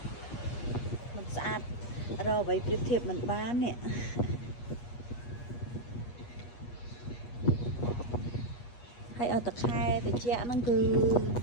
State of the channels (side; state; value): right; late; 8.4 ms